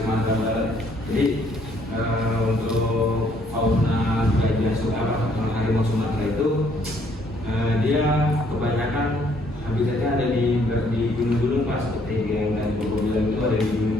Barat. Jadi untuk fauna gajah Sumatera, harimau Sumatera itu dia kebanyakan habitatnya ada di gunung-gunung Pak, seperti yang tadi Bapak bilang itu ada di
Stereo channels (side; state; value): both; normal; correlation 0.66